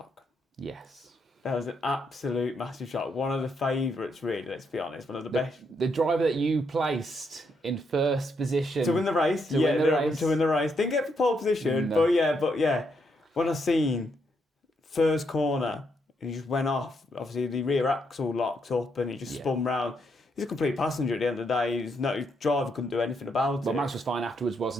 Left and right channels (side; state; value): both; normal; correlation 0.77